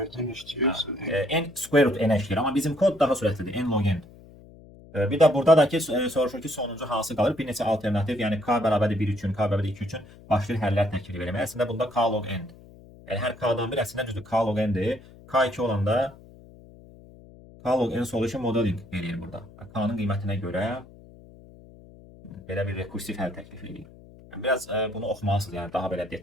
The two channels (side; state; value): left; noise; hum, 21 dB below the sound